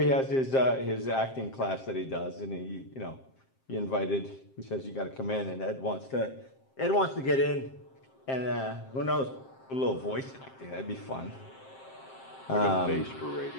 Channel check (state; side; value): late; right; 7.6 ms